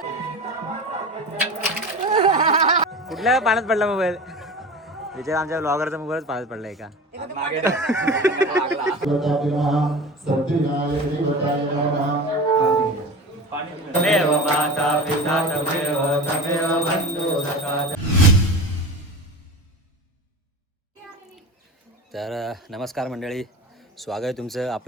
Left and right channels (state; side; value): normal; both; correlation 0.32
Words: कुठल्या पाण्यात पडला मोबाईल? विचार आमच्या ब्लॉगरचा मोबाईलच पाण्यात पडलाय का? तर नमस्कार मंडळी, स्वागत आहे तुमचं